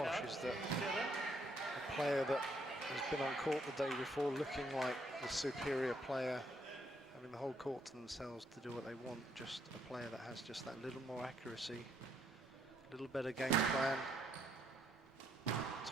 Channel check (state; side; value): normal; both; correlation 0.71